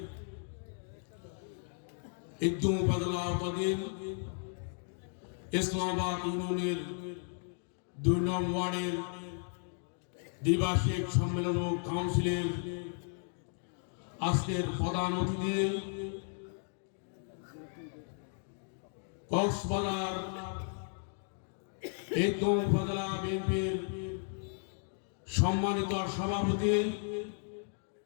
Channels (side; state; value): right; silent; 55 dB below the other